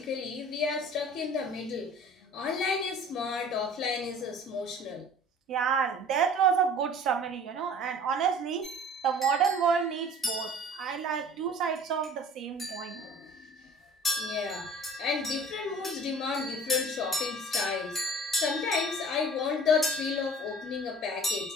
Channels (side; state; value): both; normal; correlation 0.46